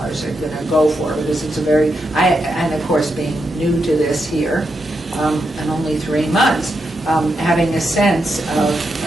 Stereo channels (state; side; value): normal; both; correlation 0.84